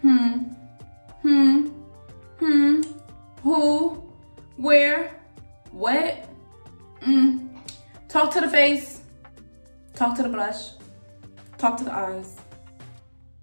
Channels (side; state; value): both; inverted; correlation -1.00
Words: Who, where, what? Talk to the face, talk to the blush, talk to the eyes.